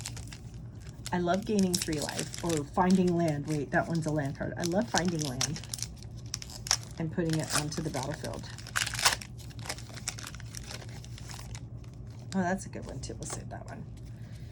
I love gaining 3 life, or finding land. Wait, that one's a land card. I love finding land and putting it onto the battlefield. Oh, that's a good one too. We'll save that one.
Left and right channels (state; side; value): identical; both; correlation 1.00